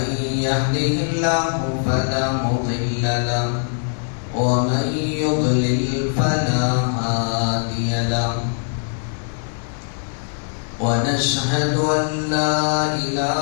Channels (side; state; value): right; silent; digital silence